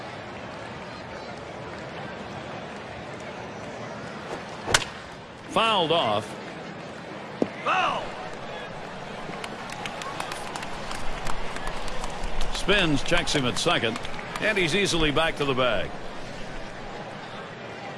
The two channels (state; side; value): identical; both; correlation 1.00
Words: Fouled off. Foul. Spins, checks him at second, and he's easily back to the bag.